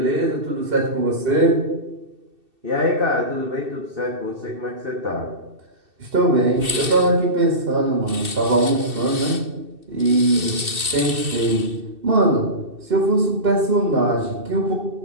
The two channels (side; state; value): left; late; 2.7 ms